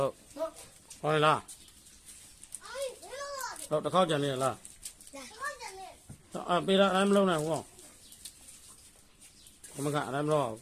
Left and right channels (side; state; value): both; identical; correlation 1.00